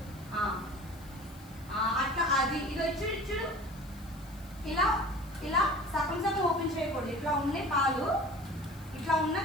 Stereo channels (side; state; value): left; noise; hiss, 23 dB below the sound